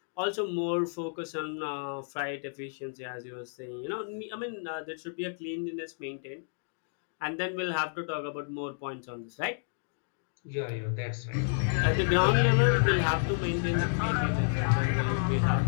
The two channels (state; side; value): silent; right; digital silence